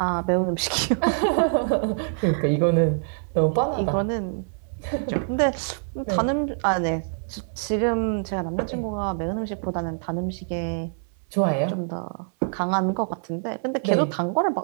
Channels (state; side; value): silent; left; 61 dB below the other